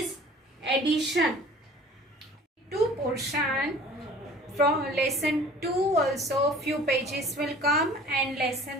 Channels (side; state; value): both; normal; correlation 0.47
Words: addition. 2 portion from lesson 2 also few pages will come, and